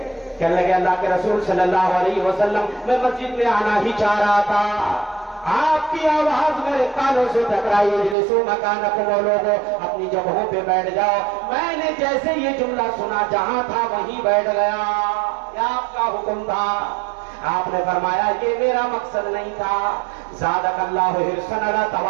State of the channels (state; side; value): drops out; left; at 8.2 s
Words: کہنے لگے اللہ کے رسول صلی اللہ علیہ وسلم میں مسجد میں آنا ہی چاہ رہا تھا، آپ کی آواز میرے کانوں سے ٹکرائی، اجلسوا مکانکم، لوگوں اپنی جگہوں پہ بیٹھ جاؤ. میں نے جیسے یہ جملہ سنا جہاں تھا وہیں بیٹھ گیا. کیا آپ کا حکم تھا؟ آپ نے فرمایا یہ میرا مقصد نہیں تھا. زادک اللہ حرصا علی